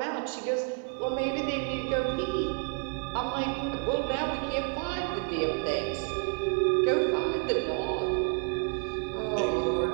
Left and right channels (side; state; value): left; quieter; 36.3 dB